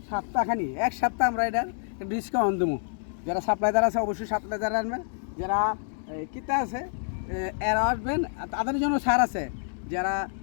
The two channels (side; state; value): right; silent; digital silence